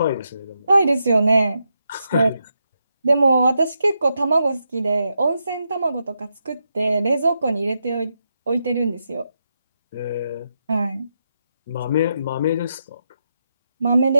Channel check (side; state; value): both; inverted; correlation -0.84